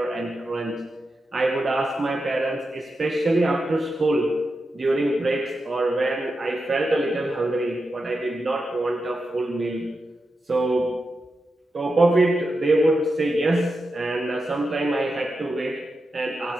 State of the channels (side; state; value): both; normal; correlation 0.89